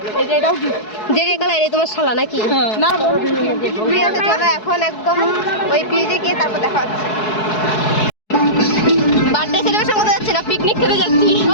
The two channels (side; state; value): right; late; 4.7 ms